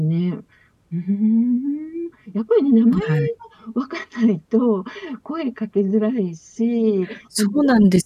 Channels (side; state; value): both; identical; correlation 1.00